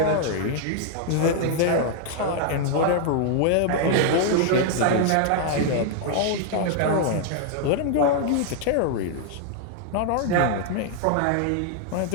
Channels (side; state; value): both; different; correlation -0.01